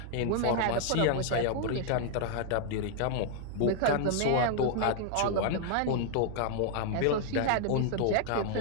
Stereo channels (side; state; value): both; different; correlation 0.00